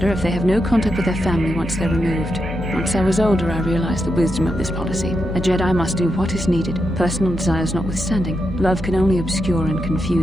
if they have no contact with their family once they're removed. Once I was older, I realized the wisdom of this policy. A Jedi must do what is needed, personal desires notwithstanding. Love can only obscure and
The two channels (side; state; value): both; normal; correlation 0.85